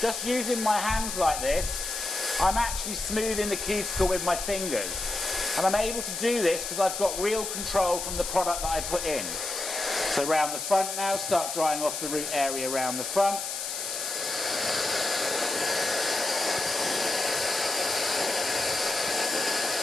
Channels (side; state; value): left; noise; hiss, 5 dB below the sound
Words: using my hands like this, I'm actually smoothing the cuticle with my fingers. And I'm able to do this because I've got real control from the product that I put in. So around the front now, start drying off the root area around the front.